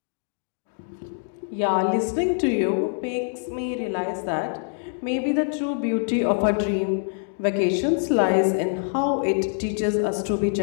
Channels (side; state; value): right; silent; digital silence